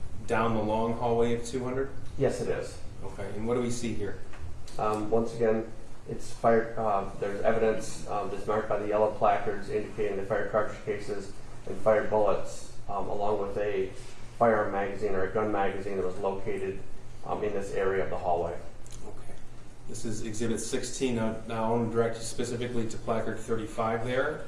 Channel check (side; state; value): both; identical; correlation 1.00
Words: down the long hallway of 200? Yes, it is. Okay, and what do we see here? Once again, it's fired. There's evidence that's marked by the yellow placards indicating the fired cartridge cases and fired bullets, along with a firearm magazine or a gun magazine that was located in this area of the hallway. Okay. This is Exhibit 16. Now I want to direct you specifically to placard 35 there,